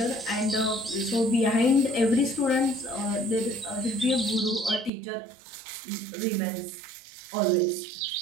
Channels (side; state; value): left; drops out; at 4.9 s